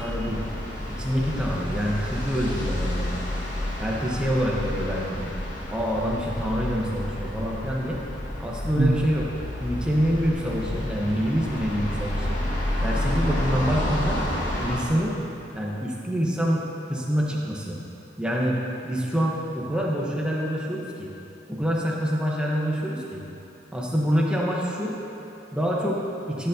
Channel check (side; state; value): both; normal; correlation 0.82